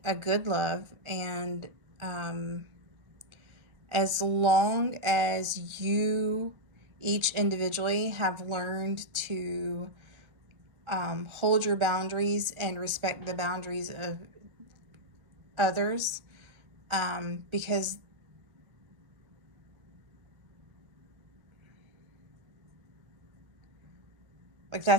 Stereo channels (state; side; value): late; left; 1.4 ms